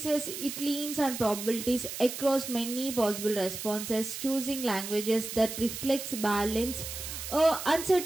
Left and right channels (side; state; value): right; noise; hiss, 7 dB below the sound